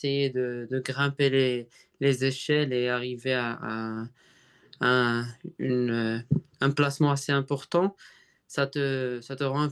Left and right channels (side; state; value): both; identical; correlation 1.00